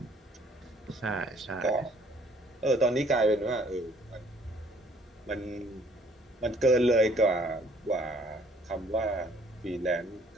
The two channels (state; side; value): normal; both; correlation 0.60